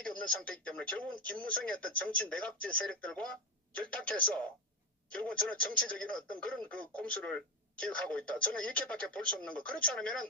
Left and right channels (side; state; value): both; normal; correlation 0.13